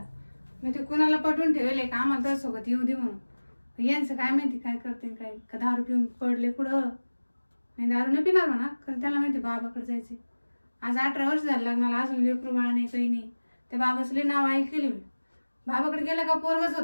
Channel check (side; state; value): both; inverted; correlation -1.00